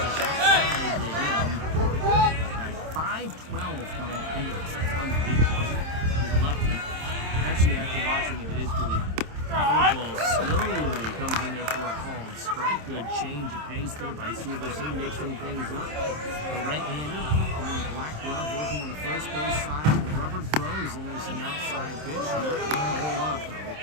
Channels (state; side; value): late; left; 27 ms